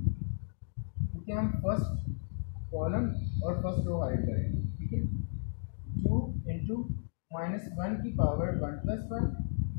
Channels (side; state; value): right; silent; digital silence